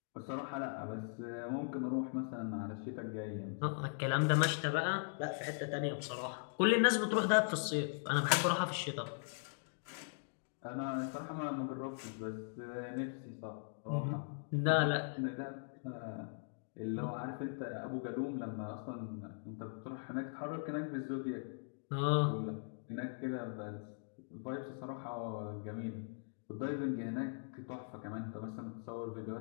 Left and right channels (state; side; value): silent; right; digital silence